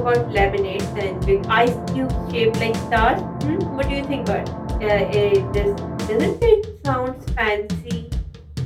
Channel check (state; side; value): identical; both; correlation 1.00